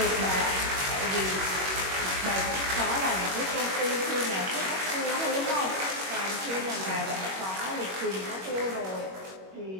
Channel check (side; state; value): left; late; 21 ms